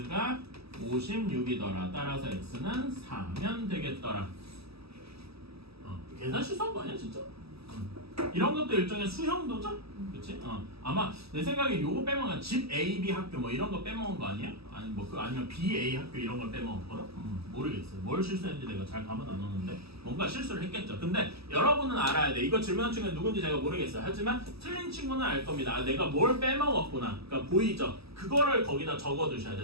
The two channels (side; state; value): left; late; 0.78 ms